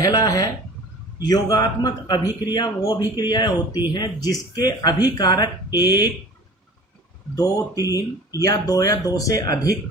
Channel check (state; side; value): normal; both; correlation 0.43